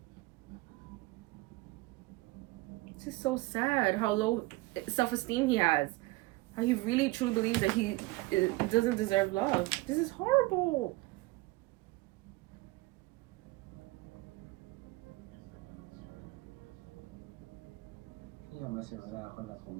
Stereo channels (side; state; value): left; quieter; 21.4 dB